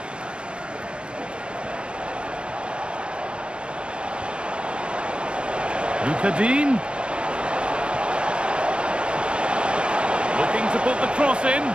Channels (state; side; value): late; left; 0.055 ms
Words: Dean. Looking to put the cross in.